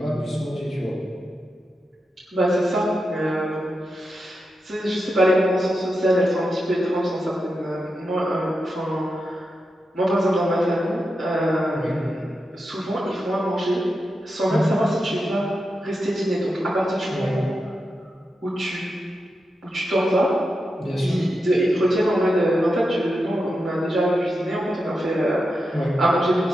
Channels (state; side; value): normal; both; correlation 0.88